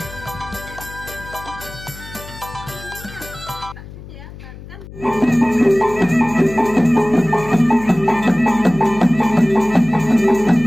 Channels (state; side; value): noise; left; hum, 15 dB below the sound